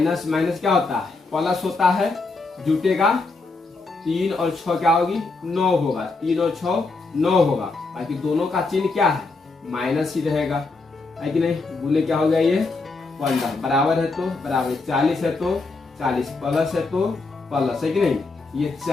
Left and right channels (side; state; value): right; quieter; 3.7 dB